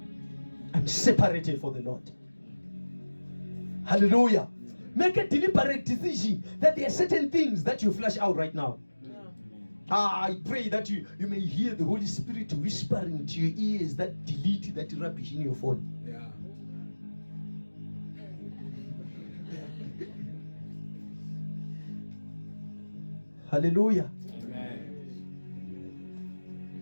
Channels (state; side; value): inverted; both; correlation -1.00